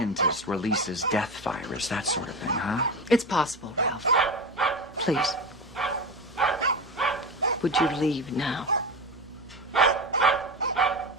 releases death virus, that sort of thing, huh? It's possible, Ralph. Please. Would you leave now?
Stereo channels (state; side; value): normal; both; correlation 0.22